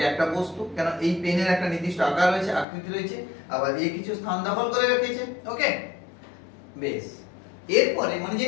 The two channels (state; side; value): drops out; right; at 2.7 s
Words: একটা বস্তু, কেন এই পেনের একটা নির্দিষ্ট আকার রয়েছে, আকৃতি রয়েছে, আবার এই কিছু স্থান দখল করে রেখেছে। ওকে, বেশ। এরপরে মানে